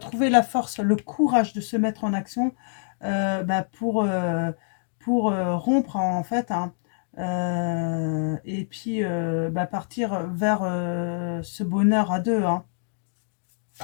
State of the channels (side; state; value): right; silent; digital silence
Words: la force, le courage de se mettre en action, bah, pour rompre, en fait, hein, et puis bah, partir vers ce bonheur à deux, hein,